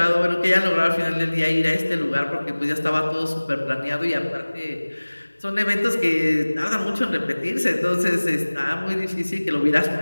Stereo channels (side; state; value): both; inverted; correlation -1.00